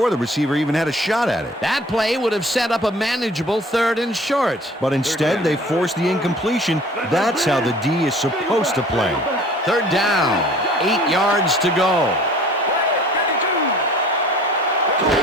the receiver even had a shot at it. That play would have set up a manageable 3rd and short. But instead, they forced the incompletion. That's how the D is supposed to play. Third down. 8 yards to go.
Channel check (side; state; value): both; normal; correlation 0.49